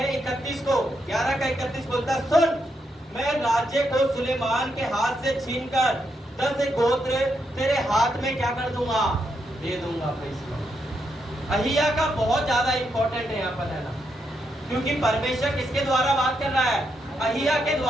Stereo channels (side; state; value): both; normal; correlation 0.81